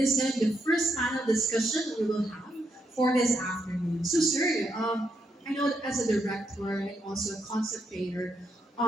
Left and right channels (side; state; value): both; normal; correlation 0.79